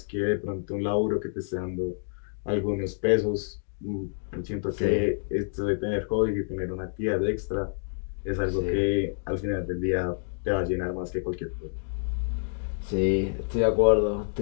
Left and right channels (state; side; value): silent; right; digital silence